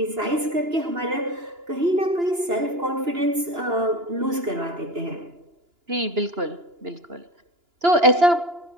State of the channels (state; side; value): late; left; 2.9 ms